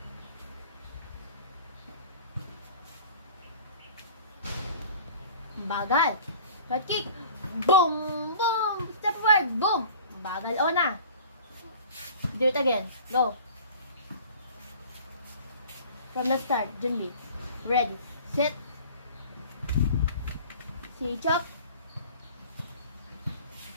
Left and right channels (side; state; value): both; inverted; correlation -0.45